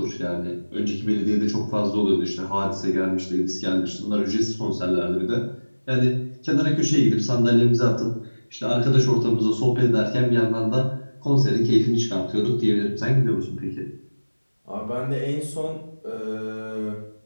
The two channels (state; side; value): inverted; both; correlation -1.00